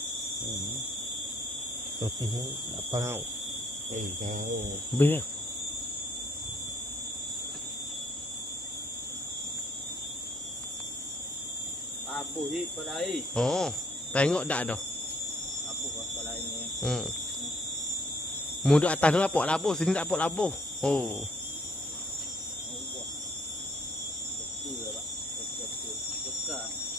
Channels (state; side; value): normal; both; correlation 0.65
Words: Tapi apa kau? Kau. Biar. Labuh je pada air. Oh, tengok dah dah. Labuh pada air ni. Mu duduk atas tu nampak labuh, sini tak nampak labuh. Oh.